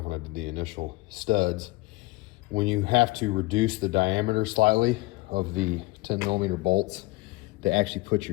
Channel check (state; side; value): quieter; right; 21.2 dB